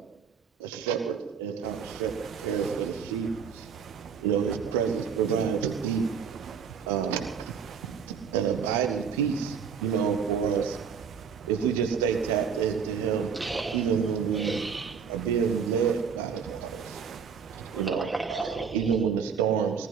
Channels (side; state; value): left; quieter; 6.7 dB